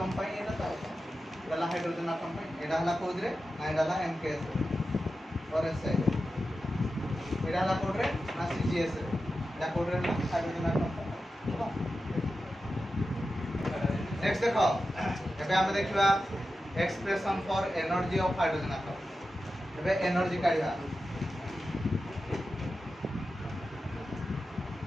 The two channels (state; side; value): normal; both; correlation 0.92